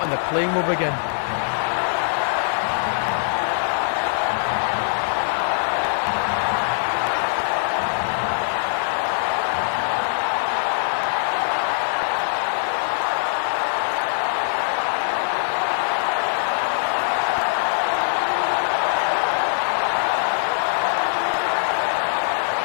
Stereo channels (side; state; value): right; silent; 64 dB below the other